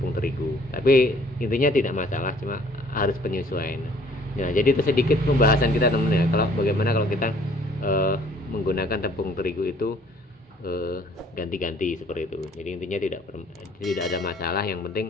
terigu. Tapi intinya tidak masalah, cuma harus penyesuaian. Nah jadi itu sedikit pembahasan kita teman-teman ya, kalau bagaimana kalau kita menggunakan tepung terigu itu ganti-ganti seperti itu. Jadi intinya tidak ada masalah, yang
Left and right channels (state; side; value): normal; both; correlation 0.58